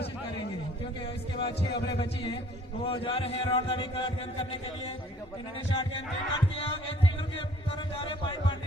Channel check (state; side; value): normal; both; correlation 0.56